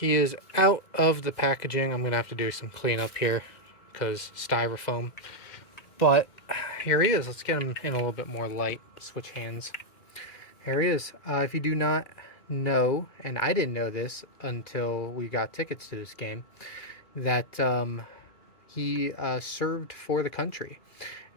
is out of the packaging. I'm going to have to do some cleanup here because styrofoam. But here he is. Let's get him in a little bit more light. Switch hands. Here he is. If you do not know, and I didn't know this until we got tickets to this game, that he served for the country.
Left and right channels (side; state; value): right; late; 2.0 ms